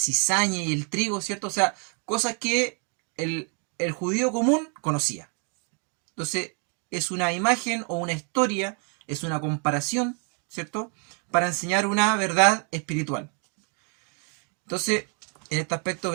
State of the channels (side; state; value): left; quieter; 39.5 dB